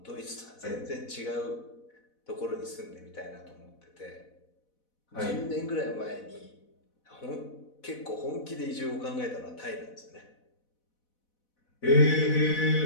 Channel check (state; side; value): late; right; 4.1 ms